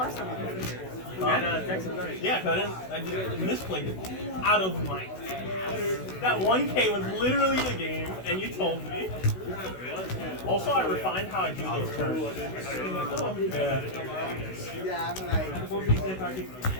time I played. And Texas Night. Yeah, because I did misplayed it out of my ass. That 1K was literally the game, and you told me. Also, I refined how I do those turns. Yeah, I'm like.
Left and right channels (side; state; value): right; late; 16 ms